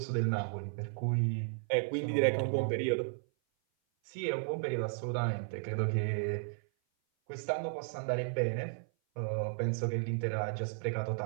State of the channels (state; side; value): silent; left; 55 dB below the other